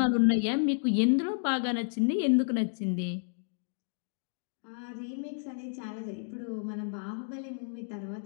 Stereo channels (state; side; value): silent; right; digital silence